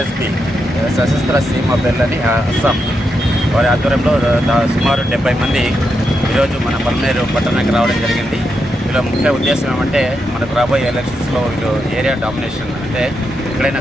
Sashastra సీమ బెల్లని అస్సాం వారి ఆధ్వర్యంలో సుమారు 70 మంది ఈరోజు మన పల్మనేరు పట్టణానికి రావడం జరిగింది. వీళ్ళ ముఖ్య ఉద్దేశం ఏమంటే మనకు రాబోయే ఎలక్షన్స్లో వీళ్ళు ఏరియా డామినేషన్ అంటే ఎక్కడైనా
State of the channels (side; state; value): both; normal; correlation 0.84